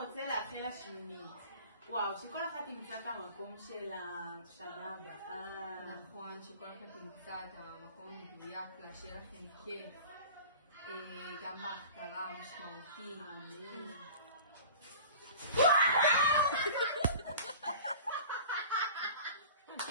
לאחל לשמינית? וואו, שכל אחת תמצא את המקום של השנה הבאה. נכון, שכל אחד תמצא את המקום מדויק לה, שיהיה לכם כיף. גם בהכתרה משמעותי.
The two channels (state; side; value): inverted; both; correlation -0.42